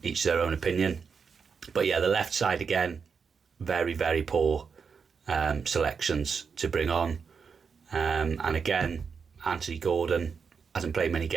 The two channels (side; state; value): left; quieter; 5.9 dB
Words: their own opinion. But yeah, the left side again, very, very poor selections to bring on. And again, Anthony Gordon hasn't played many